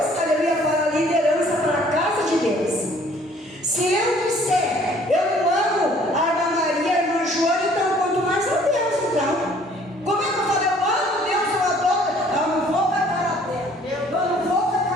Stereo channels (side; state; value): both; normal; correlation 0.57